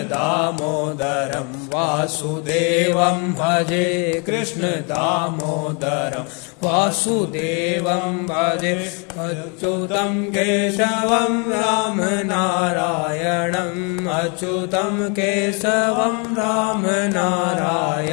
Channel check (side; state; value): right; quieter; 34.2 dB